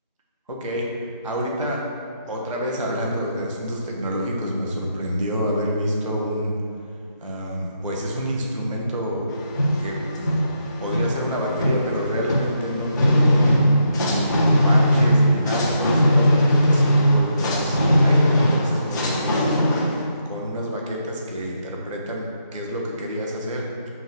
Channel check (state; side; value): inverted; both; correlation -0.79